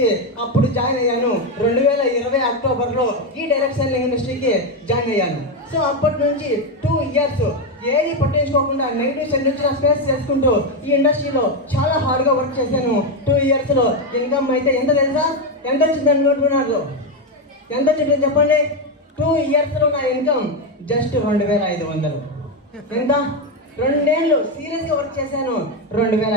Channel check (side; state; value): both; normal; correlation 0.08